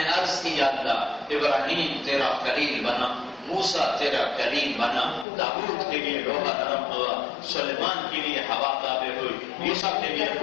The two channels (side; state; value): right; drops out; at 5.2 s